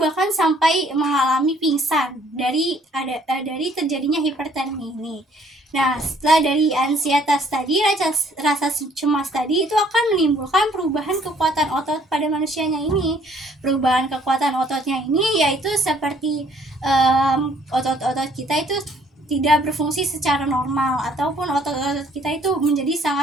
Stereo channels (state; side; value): normal; both; correlation 0.62